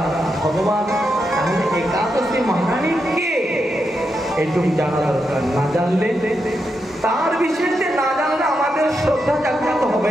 ভগবান তাহলে একাদশী মহারানী কে এইটুকু জানা দরকার। না জানলে তার বিষয়ে না জানলে আমাদের শ্রদ্ধা জাগ্রত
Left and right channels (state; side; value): normal; both; correlation 0.84